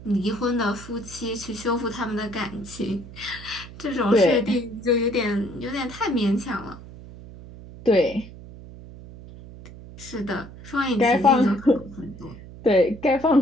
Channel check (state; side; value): noise; right; hum, 16 dB below the sound